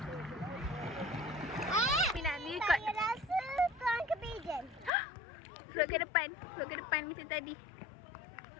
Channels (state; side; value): drops out; right; at 4.9 s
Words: Nak ni ikut. Saya rasa tuan ke pigeon. Float ke depan. Float ke depan macam tadi.